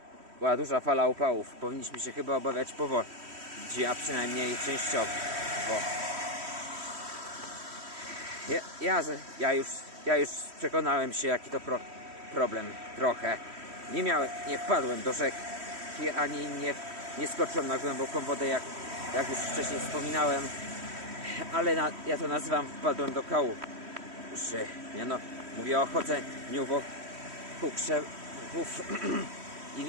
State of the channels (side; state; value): left; late; 3.1 ms